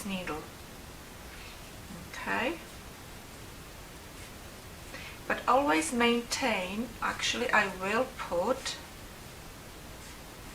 needle. Okay, but always maintain, actually I will put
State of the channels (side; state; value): both; identical; correlation 1.00